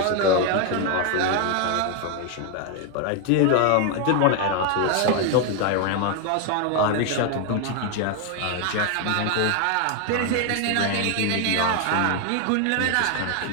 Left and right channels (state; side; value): different; both; correlation 0.01